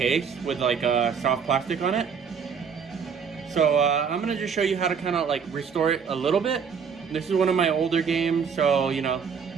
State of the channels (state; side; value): quieter; left; 6.5 dB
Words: with like a soft plastic on it. So I'm going to just show you how to kind of like restore it a little bit. This is one of my older games, so you know,